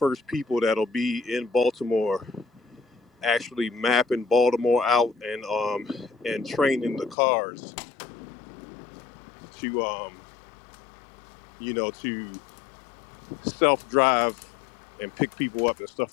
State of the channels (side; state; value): right; drops out; at 7.2 s